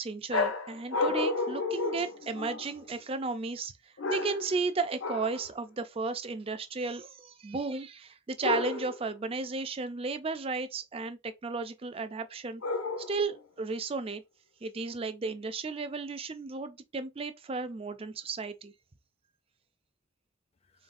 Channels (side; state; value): both; normal; correlation 0.16